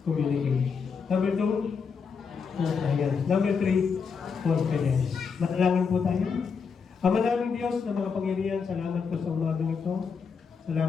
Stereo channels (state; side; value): quieter; right; 5.8 dB